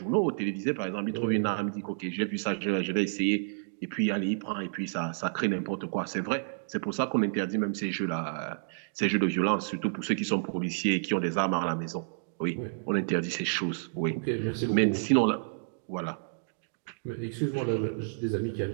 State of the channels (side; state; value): left; silent; digital silence